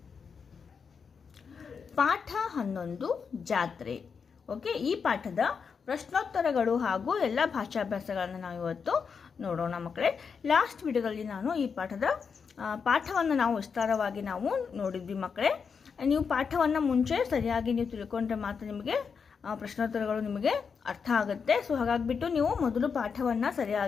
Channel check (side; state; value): right; quieter; 6.0 dB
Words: ಪಾಠ 11 ಜಾತ್ರೆ. ಓಕೆ, ಈ ಪಾಠದ ಪ್ರಶ್ನೋತ್ತರಗಳು ಹಾಗೂ ಎಲ್ಲ ಭಾಷಾಭ್ಯಾಸಗಳನ್ನು ನಾವು ಇವತ್ತು ನೋಡೋಣ ಮಕ್ಕಳೇ. ಲಾಸ್ಟ್ ವಿಡಿಯೋದಲ್ಲಿ ನಾನು ಈ ಪಾಠವನ್ನು ನಾವು ವಿಸ್ತಾರವಾಗಿ ನಾವು ನೋಡಿದ್ವಿ ಮಕ್ಕಳೇ. ನೀವು ಪಾಠವನ್ನು ಮುಂಚೆ ಸರಿಯಾಗಿ ನೀವು ತಿಳ್ಕೊಂಡ್ರೆ ಮಾತ್ರ ನಿಮಗೆ ಪ್ರಶ್ನೋತ್ತರಗಳು ನಿಮಗೆ ಅರ್ಥ ಆಗುತ್ತೆ. ಸೊ ಹಾಗಾಗಿಬಿಟ್ಟು ನೀವು ಮೊದಲು ಪಾಠವನ್ನು